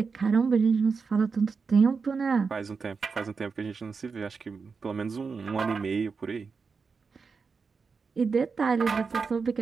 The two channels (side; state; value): left; quieter; 5.1 dB